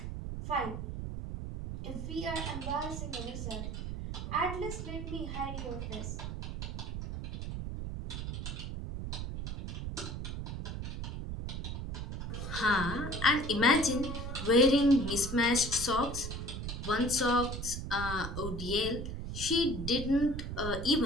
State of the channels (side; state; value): right; noise; rumble, 5 dB below the sound